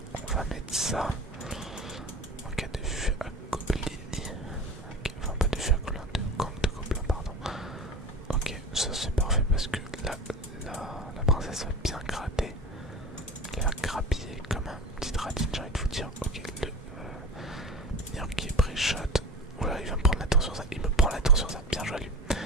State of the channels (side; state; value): both; normal; correlation 0.33